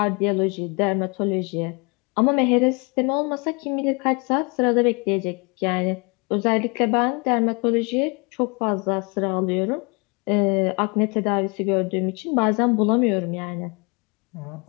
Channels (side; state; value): right; quieter; 30.8 dB